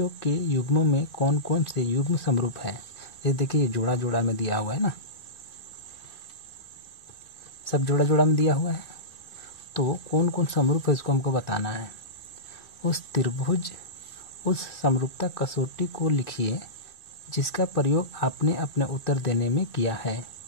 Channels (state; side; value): late; right; 2.4 ms